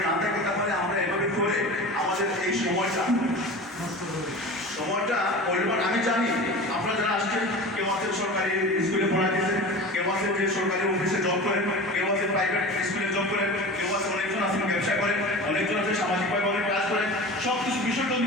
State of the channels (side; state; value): both; normal; correlation 0.34